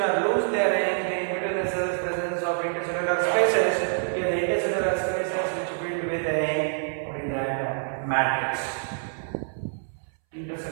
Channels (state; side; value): silent; left; 61 dB below the other